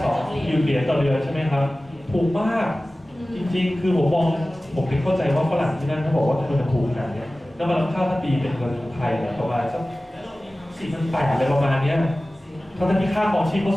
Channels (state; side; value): normal; both; correlation 0.97